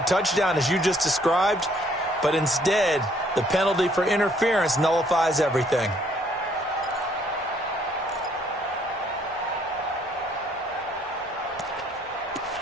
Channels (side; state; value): both; normal; correlation 0.65